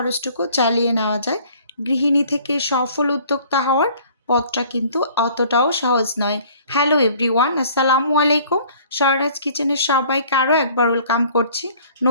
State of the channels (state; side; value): inverted; both; correlation -0.53